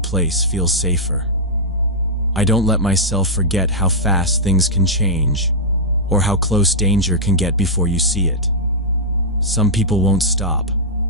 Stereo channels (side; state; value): both; normal; correlation -0.09